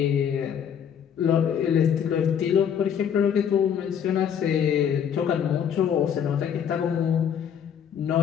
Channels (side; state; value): right; quieter; 8.3 dB